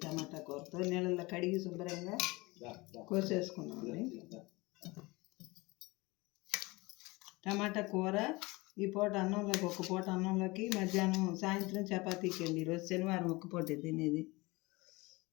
టమాటా కూరతో నీళ్ళల్లో కడిగి శుభ్రంగా కోసేసుకున్నామండి. టమాటా కూర ఈ పూట అన్నంలోకి, ఒక్క పూట అన్నంలోకి, మధ్యాహ్నం సాయంత్రం చపాతీకి అండి. ఈరోజు శనివారం ఒక్క పూటే తినేది.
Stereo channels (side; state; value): right; quieter; 23.3 dB